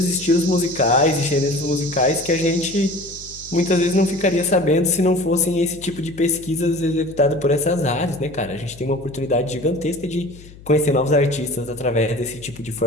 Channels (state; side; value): noise; left; hum, 20 dB below the sound